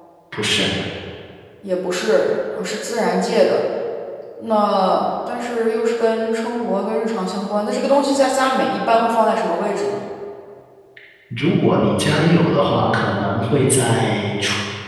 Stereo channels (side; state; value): both; identical; correlation 1.00